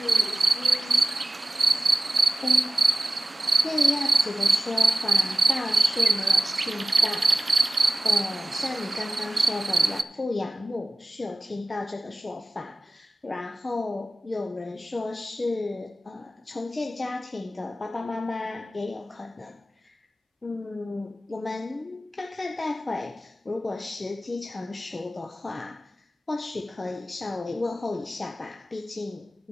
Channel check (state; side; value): normal; both; correlation 0.96